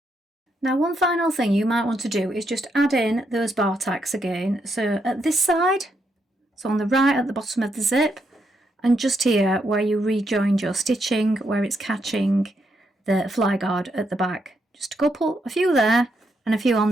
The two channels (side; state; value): both; normal; correlation 0.79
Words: Now, one final thing you might want to do is just add in those bar tacks again. So at this side, so on the right at the bottom of the zip, and just here where you rejoined your stitching, where it's catching the fly guard at the back. Just a few there and a few on